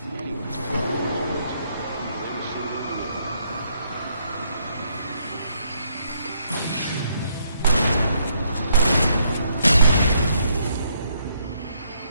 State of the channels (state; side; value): inverted; both; correlation -0.72